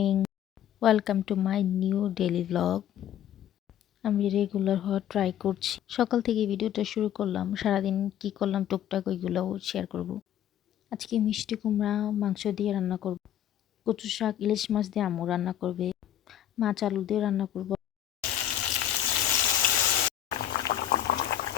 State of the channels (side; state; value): right; quieter; 11.0 dB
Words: Welcome to my new daily vlog. আমি regular হওয়ার try করছি। সকাল থেকে ভিডিওটা শুরু করলাম। সারাদিন কি করলাম টুকটাক ওইগুলোও শেয়ার করব। আজকে মিষ্টি কুমড়া মাংস দিয়ে রান্না করব। কচু শাক ইলিশ মাছ দিয়ে আম্মু রান্না করবে। মাছ আলু দিয়ে রান্না করব।